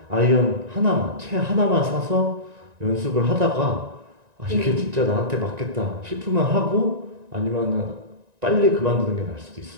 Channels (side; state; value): left; late; 1.9 ms